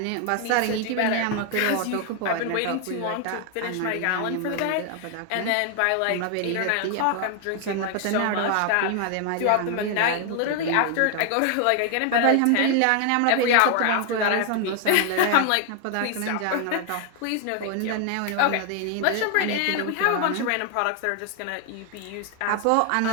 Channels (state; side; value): different; both; correlation 0.00